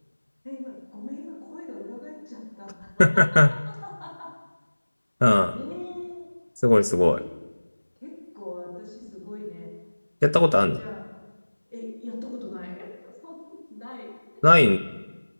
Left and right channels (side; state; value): both; inverted; correlation -1.00